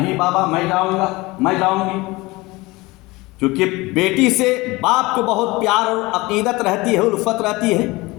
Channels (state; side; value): quieter; right; 22.0 dB